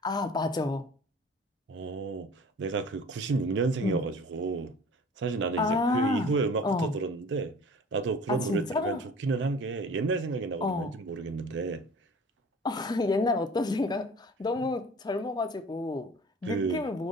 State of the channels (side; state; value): both; normal; correlation 0.44